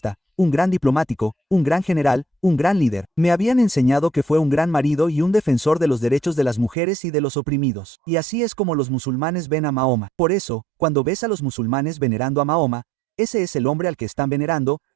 un gran diplomático, un gran general, un gran líder. Me habían enseñado que fue un gran marido y un defensor de los derechos de las mujeres y de los oprimidos. Y así es como los musulmanes ven a Mahoma. Por eso, cuando ves a los musulmanes venerando a Mahoma, ese es el hombre al que están venerando,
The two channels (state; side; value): drops out; left; at 6.8 s